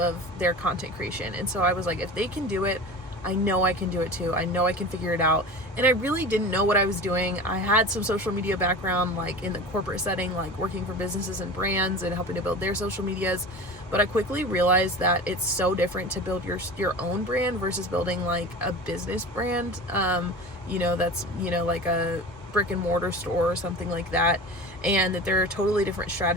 their content creation. And so I was like, if they can do it, I know I can do it too. I know I can figure it out. And I really didn't know what I was doing. I had some social media background, like in the corporate setting, like working for businesses and brands and helping to build their social medias. But I quickly realized that it's so different to build your own brand versus building like a business brand. That's, like a brick and mortar store or something like that, and that there are totally different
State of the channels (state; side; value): normal; both; correlation 0.34